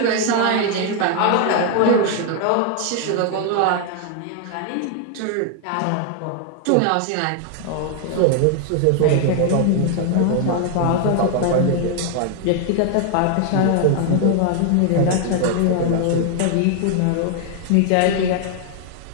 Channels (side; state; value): both; different; correlation 0.00